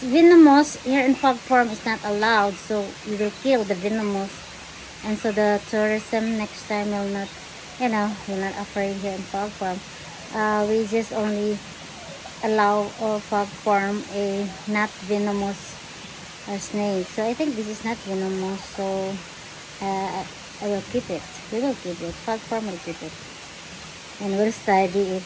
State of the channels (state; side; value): identical; both; correlation 1.00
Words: venomous, here in F.O.G farm is not allowed, so we will kill the venomous, and so the tourism next time will not, you know, will not afraid here in F.O.G farm. We just only allow F.O.G farm a not venomous snake. So I think this is not venomous, so I will keep it. We will keep it. F.O.G farm will keep it, and we'll study if